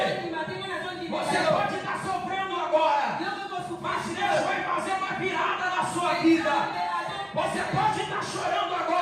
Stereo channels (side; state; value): both; identical; correlation 1.00